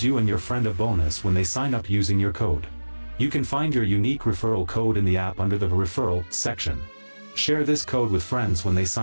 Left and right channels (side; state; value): both; inverted; correlation -1.00